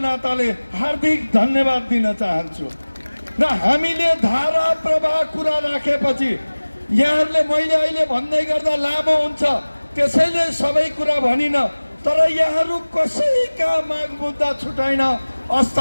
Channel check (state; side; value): inverted; both; correlation -1.00